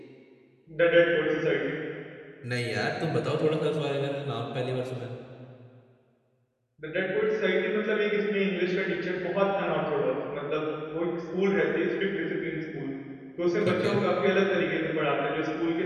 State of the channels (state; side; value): identical; both; correlation 1.00